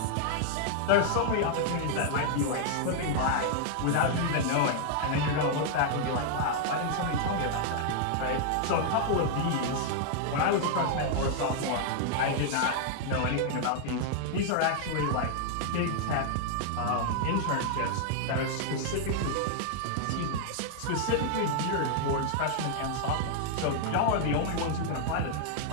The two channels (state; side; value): different; both; correlation 0.00